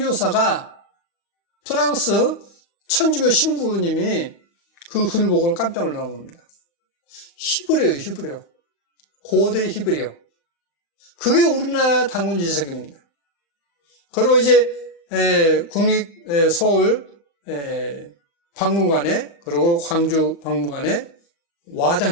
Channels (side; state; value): right; late; 35 ms